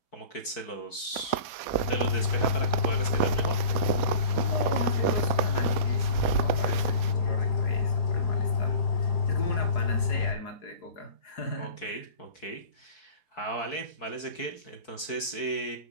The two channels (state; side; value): late; right; 4.6 ms